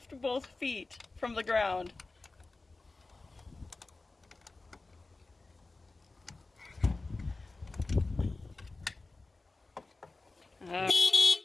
both feet from the ground.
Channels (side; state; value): right; quieter; 3.4 dB